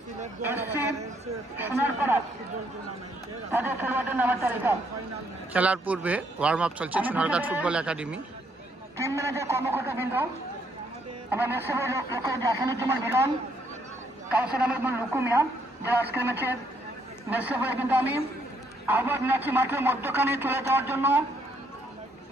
SC Sonarpara, তাদের খেলোয়াড়দের নামের তালিকা। খেলার পূর্বে ওয়ার্ম আপ চলছে Sonarghat football academy. Team manager কর্মকর্তাবৃন্দ, আমরা মেসেবের লক্ষ্য আসানুজ্জামান মিলন, কাউসার আহমেদ লুকুমিয়া, যারা আজকের ম্যাচের মেসেবে, কিন্তু আমি আহ্বান জানাচ্ছি মাঠের মধ্যখানে চলে যাওয়ার জন্য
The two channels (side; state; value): both; normal; correlation 0.71